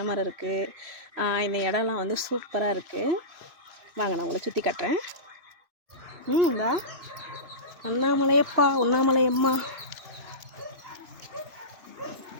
மரம் இருக்குது. இந்த இடம்லாம் வந்து சூப்பராக இருக்குது. வாங்க நான் உங்களை சுற்றி காட்டுறேன். இந்தா அண்ணாமலையப்பா, உண்ணாமலையம்மா.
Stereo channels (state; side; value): late; left; 2.9 ms